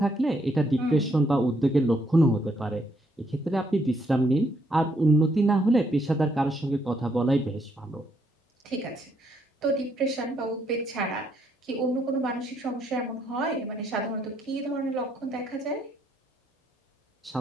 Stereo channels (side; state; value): both; normal; correlation 0.73